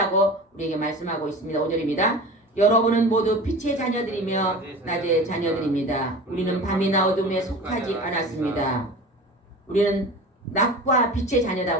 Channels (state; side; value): normal; both; correlation 0.36